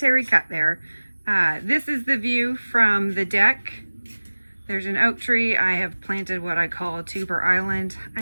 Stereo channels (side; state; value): both; inverted; correlation -1.00